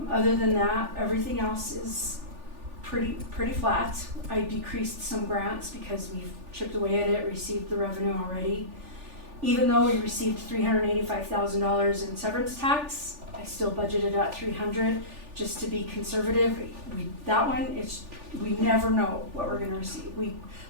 Other than that, everything else is pretty flat. I decreased some grants because we've chipped away at it, received the revenue already. Even though we received $385,000 in severance tax, I still budgeted at $300,000 just to be conservative. We never know what we're going to receive. We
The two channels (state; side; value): late; left; 3.4 ms